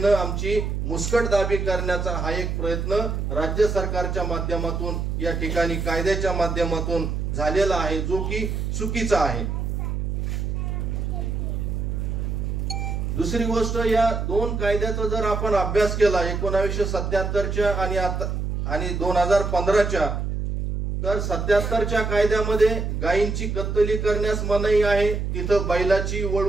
आमची मुस्कटदाबी करण्याचा हा एक प्रयत्न राज्य सरकारच्या माध्यमातून या ठिकाणी कायद्याच्या माध्यमातून झालेला आहे, जो की चुकीचा आहे। दुसरी गोष्ट, या दोन कायद्याचा जर आपण अभ्यास केला 1977च्या आणि 2015च्या, तर 77च्या कायद्यामध्ये गायींची कत्तली करण्यास मनाई आहे, तिथं बैलाची,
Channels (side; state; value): right; noise; hum, 2 dB below the sound